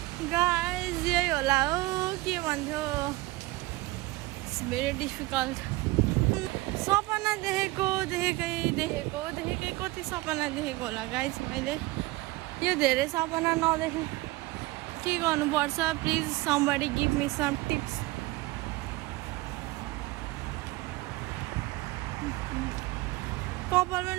गाइस यही होला हो के भन्थ्यो इट्स भेरी डिफिकल्ट सपना देखेकै कति सपना देखेको होला गाइस मैले यो धेरै सपना नदेखेँ के गर्नुपर्छ please somebody give me some tips कपाल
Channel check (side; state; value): left; quieter; 20.6 dB